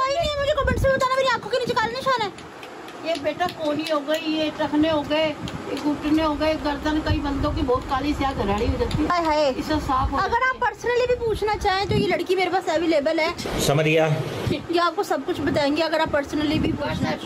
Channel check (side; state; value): both; identical; correlation 1.00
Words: नहीं है, मुझे कमेंट्स में बताना मेरी आंखों के नीचे काले निशान है। ये बेटा कोनी हो गई, ये टखने हो गए, ये घुटने हो गए, गर्दन, कई बंदों की बहुत काली स्याह घराड़ी हो जाती है। हाय हाय। इससे साफ हो अगर आप पर्सनली भी पूछना चाहें तो ये लड़की मेरे पास अवेलेबल है, समझ गया। ये आपको सब कुछ बताएंगे। अगर आप पर्सनली भी पूछना WhatsApp के